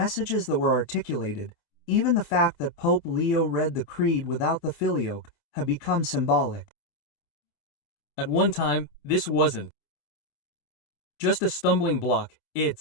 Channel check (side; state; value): right; late; 27 ms